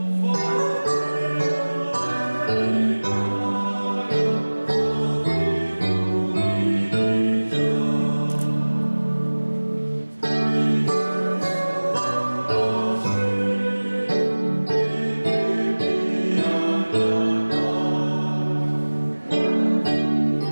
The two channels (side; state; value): both; inverted; correlation -1.00